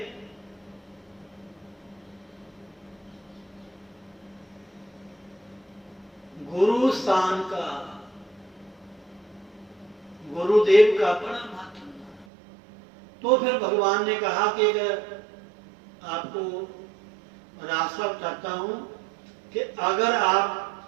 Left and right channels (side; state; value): left; drops out; at 12.2 s